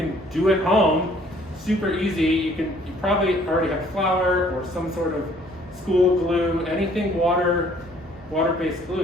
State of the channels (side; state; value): both; normal; correlation 0.59